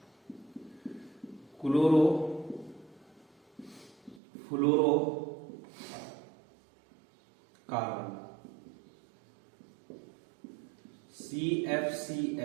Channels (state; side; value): drops out; left; at 4.2 s